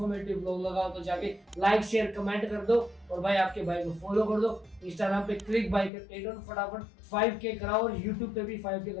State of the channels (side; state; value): right; drops out; at 5.9 s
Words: व्लॉग लगा तो जाके लाइक शेयर कमेंट कर दो, और भाई आपके भाई को फॉलो कर दो। इंस्टाग्राम पे क्लिक बाइकर 8 फटाफट 5K कराओ, और यूट्यूब पे भी 5K